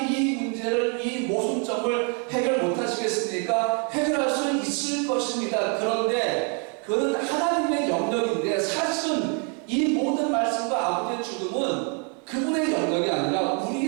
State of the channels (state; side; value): quieter; left; 38.6 dB